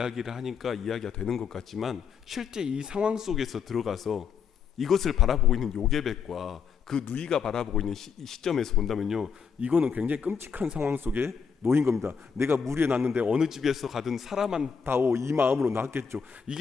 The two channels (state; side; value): quieter; right; 6.4 dB